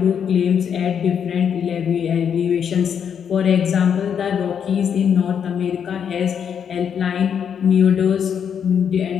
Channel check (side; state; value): right; quieter; 7.8 dB